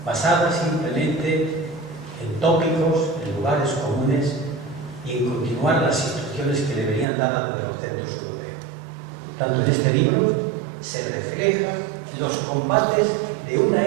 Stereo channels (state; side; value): drops out; left; at 7.1 s